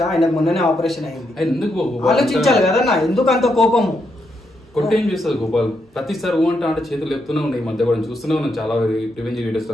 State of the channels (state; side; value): normal; both; correlation 0.80